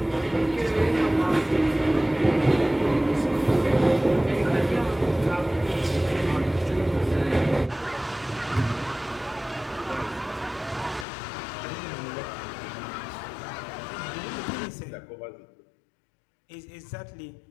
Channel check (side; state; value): right; drops out; at 11.1 s